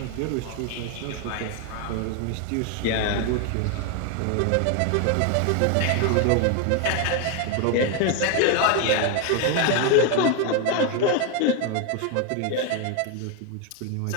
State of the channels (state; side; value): different; both; correlation 0.01